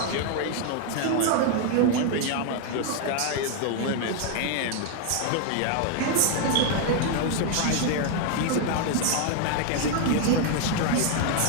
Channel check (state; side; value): different; both; correlation 0.00